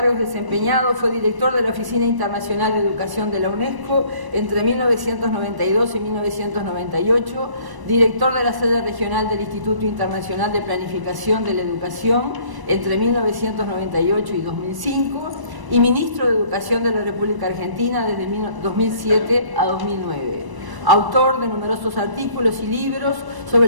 desempeñados, fue director de la Oficina Internacional de Educación de la UNESCO entre 1992 y 1998, director de la sede regional del Instituto Internacional de Planificación de la Educación entre 1998 y 2005 y ministro de Educación de la República Argentina desde 2007 a 2009. Autor de numerosos artículos y libros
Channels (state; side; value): late; left; 1.0 ms